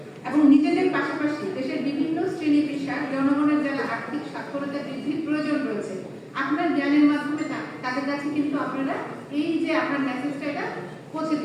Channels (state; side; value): identical; both; correlation 1.00